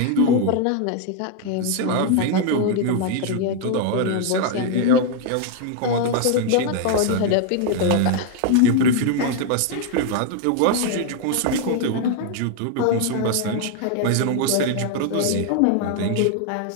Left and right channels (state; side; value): different; both; correlation 0.00